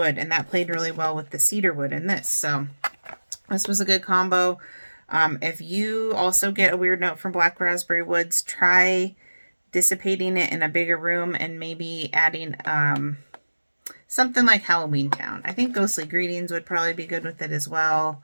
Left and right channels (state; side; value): inverted; both; correlation -1.00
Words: and that played really well with the cedar wood in this. So this was a good combo. If you also get a weird note from black raspberry woods, try dissipating it in a bigger room and maybe adding something like Halloween Town. I think Ghostly Greetings would probably be good with it as well.